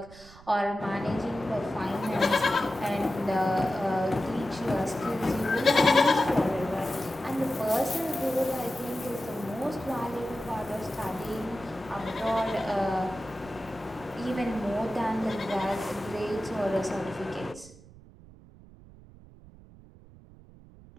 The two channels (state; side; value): noise; right; rumble, 21 dB below the sound